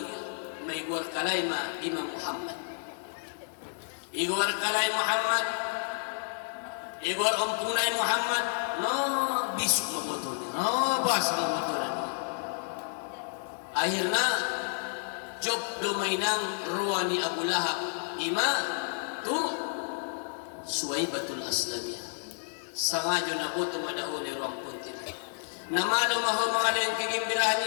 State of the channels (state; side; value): silent; right; digital silence